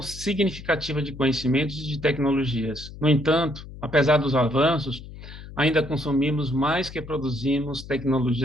significativa de conhecimentos e de tecnologias. No entanto, apesar dos avanços, ainda consumimos mais que produzimos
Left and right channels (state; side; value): noise; left; hum, 14 dB below the sound